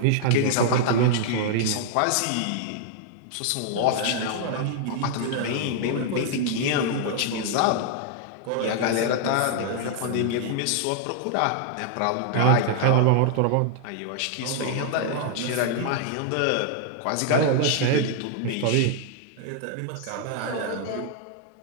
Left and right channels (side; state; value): both; different; correlation 0.00